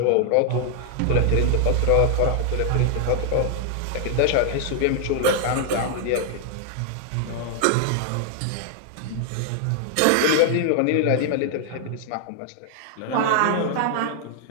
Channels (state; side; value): different; both; correlation 0.00